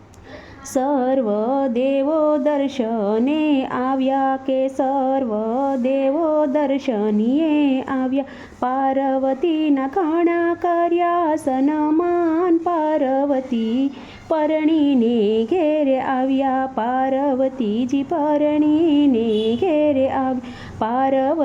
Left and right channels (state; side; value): identical; both; correlation 1.00